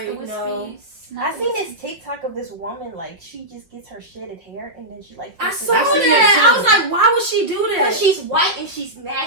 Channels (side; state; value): left; late; 5.9 ms